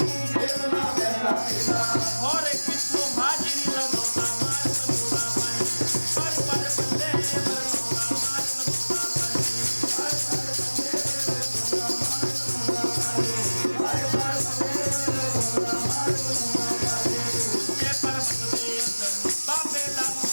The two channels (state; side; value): inverted; both; correlation -1.00